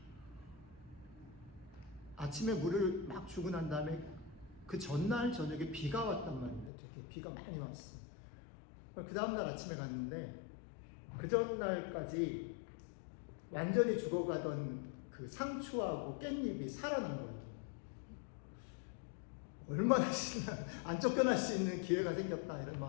아침에 물을 막 주고 난 다음에 그 전날 저녁에 비가 왔단 말인데, 되게 비가 많이 왔어요. 그 다음날 아침에 갔는데 그 전날까지 완전히 죽어가던 그 상추하고 깻잎이 살아난 거예요. 얼마나 안 쫓겨날 수 있는 기회가 생겼다, 이런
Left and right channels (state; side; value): drops out; right; at 6.7 s